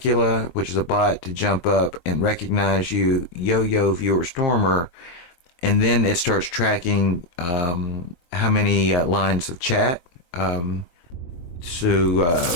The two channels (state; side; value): late; right; 23 ms